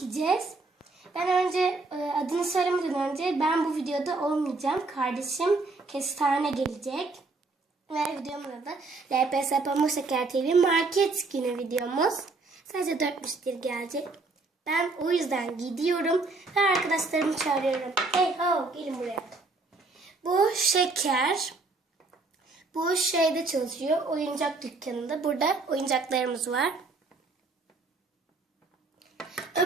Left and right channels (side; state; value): left; quieter; 3.6 dB